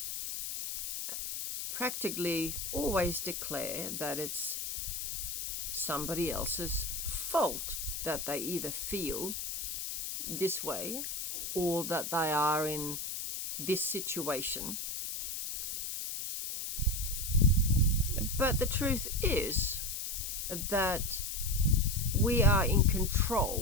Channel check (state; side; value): noise; left; hiss, 4 dB below the sound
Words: practically always declare that it's somebody else's fault that they either feel this way or that they are in this situation. But the truth is that we are in